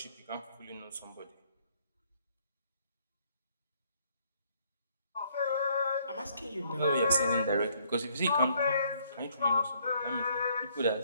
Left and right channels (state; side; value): inverted; both; correlation -0.67